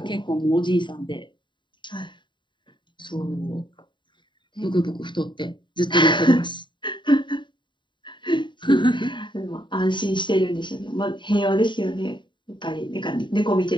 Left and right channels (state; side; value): late; right; 0.23 ms